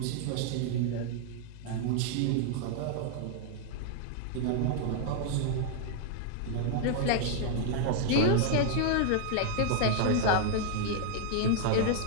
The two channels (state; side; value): different; both; correlation 0.00